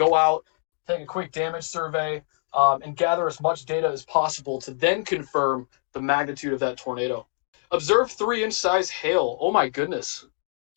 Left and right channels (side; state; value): right; silent; digital silence